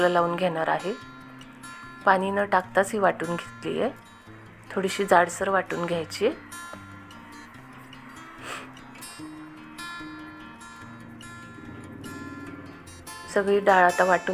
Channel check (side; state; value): both; identical; correlation 1.00